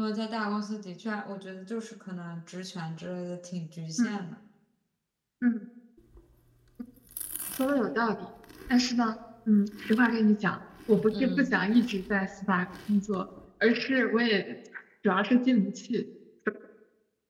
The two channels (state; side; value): identical; both; correlation 1.00